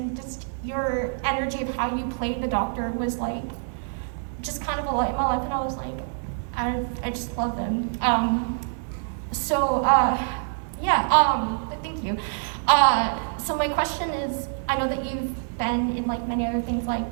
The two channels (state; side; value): silent; left; 61 dB below the other